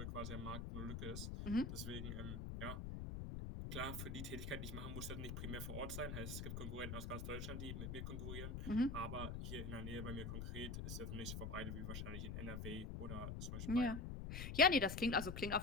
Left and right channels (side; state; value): left; noise; rumble, 4 dB below the sound